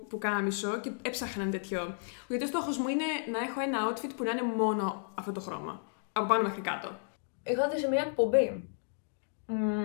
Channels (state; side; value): silent; right; digital silence